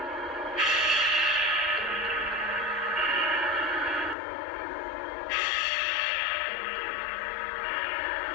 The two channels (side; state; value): right; drops out; at 4.2 s